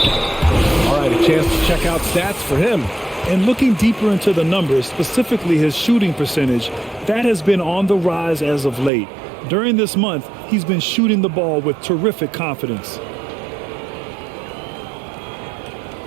All right, a chance to check out stats for him. And looking deeper into the numbers, specifically his shooting percentage, that has been on the rise as of late. During this month, he's been shooting the ball with terrific confidence.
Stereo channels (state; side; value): drops out; left; at 8.9 s